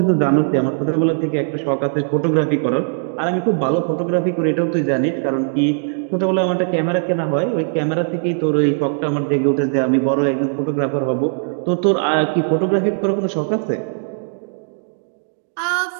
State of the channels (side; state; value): left; silent; digital silence